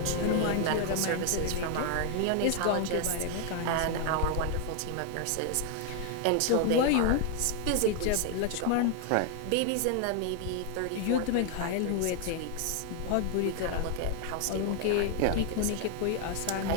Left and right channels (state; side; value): different; both; correlation 0.00